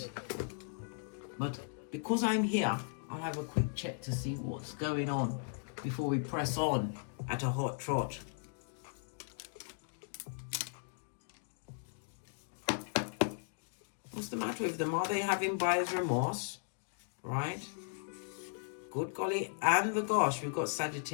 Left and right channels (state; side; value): silent; right; digital silence